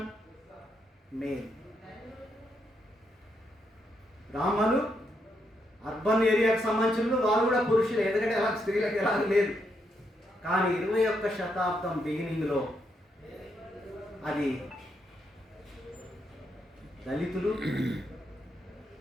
మేల్. బ్రాహ్మణులు అర్బన్ ఏరియాకు సంబంధించిన వాళ్ళు కూడా పురుషులే, ఎందుకంటే అలా స్త్రీలకు ఎలా లేదు. కానీ 21వ శతాబ్దం బిగినింగ్లో అది దళితులు,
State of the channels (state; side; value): normal; both; correlation 0.79